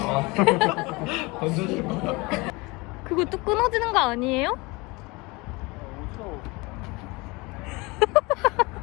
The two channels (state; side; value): quieter; right; 25.0 dB